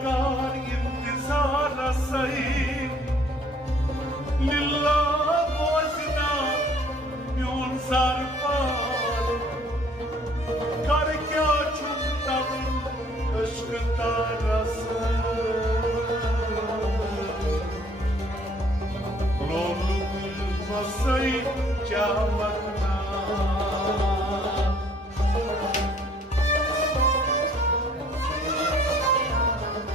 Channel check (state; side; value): normal; both; correlation 0.59